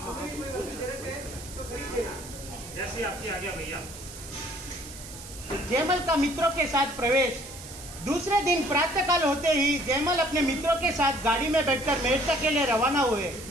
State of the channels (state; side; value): noise; right; hiss, 14 dB below the sound